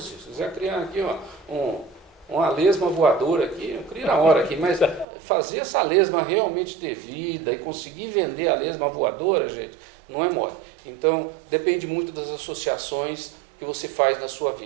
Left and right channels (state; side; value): drops out; left; at 5.1 s